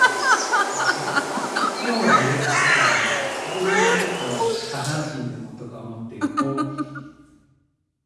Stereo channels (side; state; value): both; identical; correlation 1.00